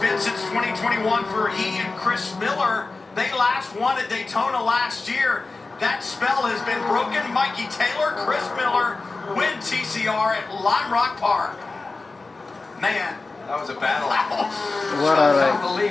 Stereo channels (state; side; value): quieter; right; 3.6 dB